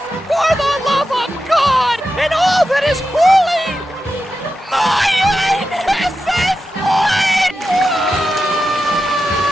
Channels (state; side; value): normal; both; correlation 0.90